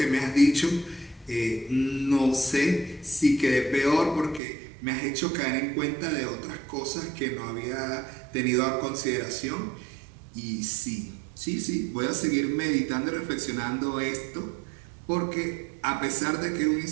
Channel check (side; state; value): left; drops out; at 4.4 s